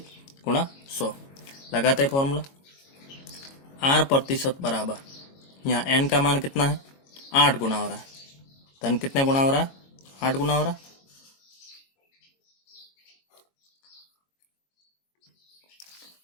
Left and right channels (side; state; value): right; late; 22 ms